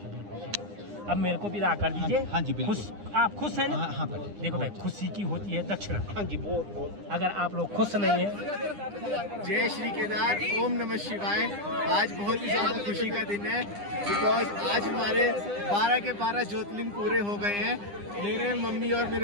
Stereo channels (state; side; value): late; left; 9.9 ms